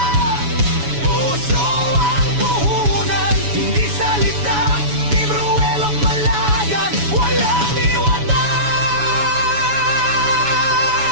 puso ang puhunan, hindi salita. Team Ruelok Malalag, walang iwanan.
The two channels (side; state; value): left; late; 7.1 ms